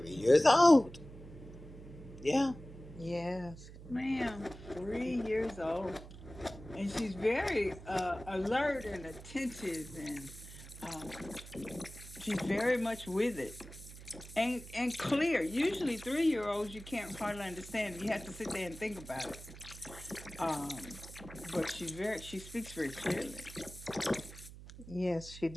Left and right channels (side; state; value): right; noise; hum, 15 dB below the sound